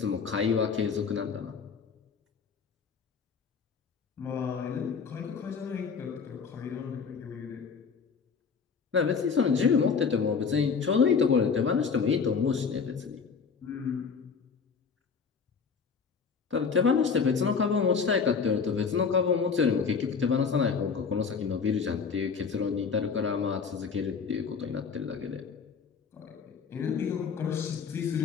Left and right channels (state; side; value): quieter; right; 5.8 dB